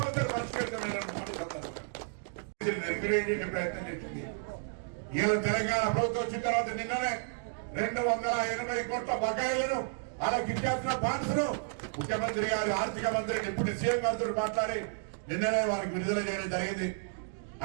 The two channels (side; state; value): left; silent; digital silence